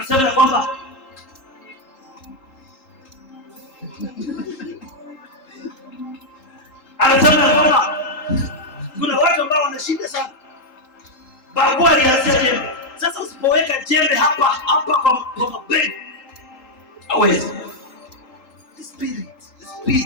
kwamba kuna watu ambao wanashinda sana. Babu alianzia jembe. Sasa usipoweka jembe hapa kwa mabegi hawezi. Spirit.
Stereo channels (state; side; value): late; right; 3.8 ms